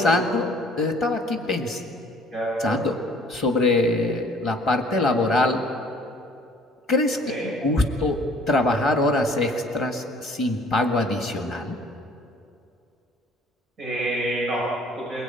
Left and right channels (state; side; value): normal; both; correlation 0.55